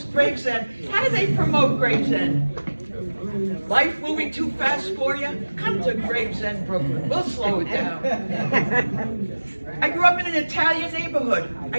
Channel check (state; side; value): inverted; both; correlation -1.00